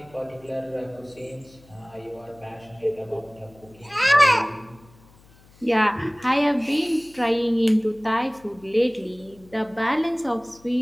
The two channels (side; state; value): left; noise; hum, 27 dB below the sound